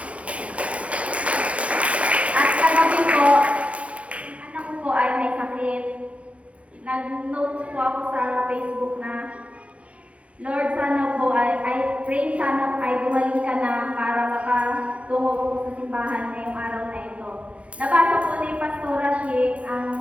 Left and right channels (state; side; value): late; left; 0.063 ms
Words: At kagabi po, anak ko po ay may sakit. Nag-note po ako sa Facebook na Lord, sana po I pray sana ay gumaling ka na para makatungo po sa simbahan ngayong araw na ito. Nabasa po ni Pastora Shi